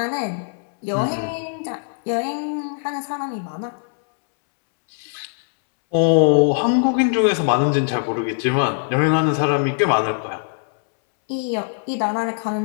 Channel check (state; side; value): silent; right; 65 dB below the other